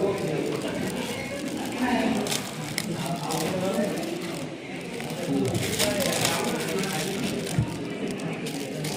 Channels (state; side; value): identical; both; correlation 1.00